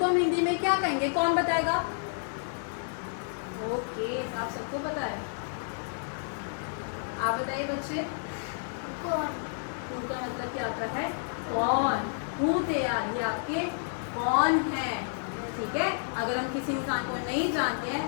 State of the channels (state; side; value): silent; right; digital silence